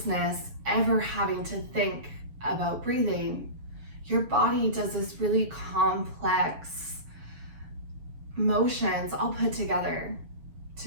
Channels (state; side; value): late; left; 7.1 ms